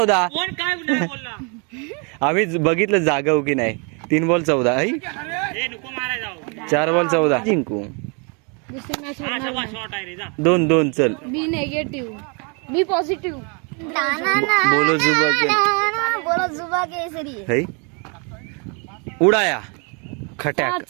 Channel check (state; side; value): quieter; left; 34.8 dB